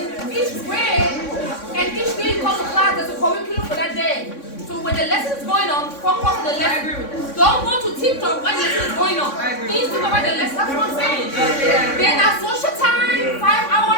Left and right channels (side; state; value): right; late; 3.6 ms